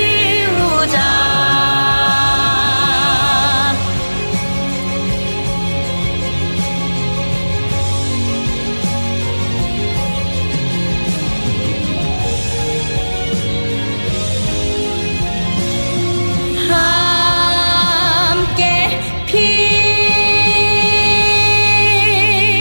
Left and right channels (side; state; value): both; inverted; correlation -1.00